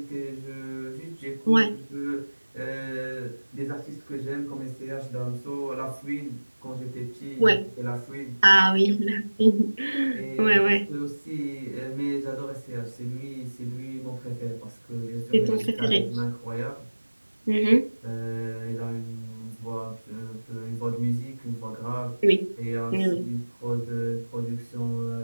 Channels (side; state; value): both; inverted; correlation -1.00